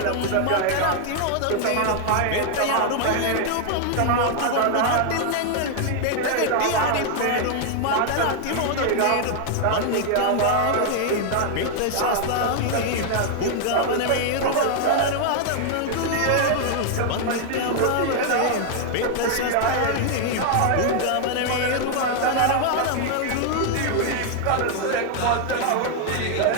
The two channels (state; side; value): different; both; correlation 0.00